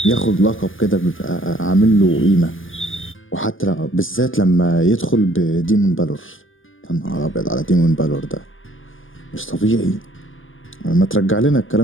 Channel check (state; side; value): late; right; 0.58 ms